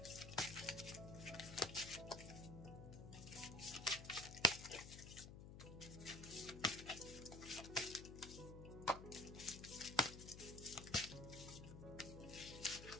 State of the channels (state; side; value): noise; left; hum, 11 dB below the sound